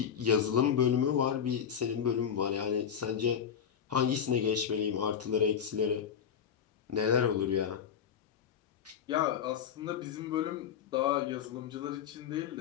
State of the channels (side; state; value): right; quieter; 8.0 dB